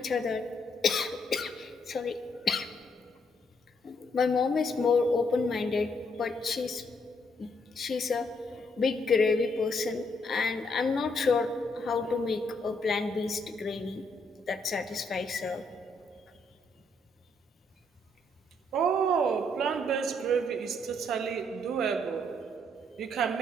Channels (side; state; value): both; normal; correlation 0.73